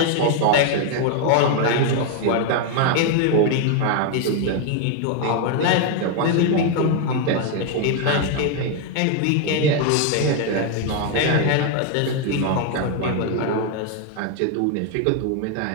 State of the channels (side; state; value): both; different; correlation 0.00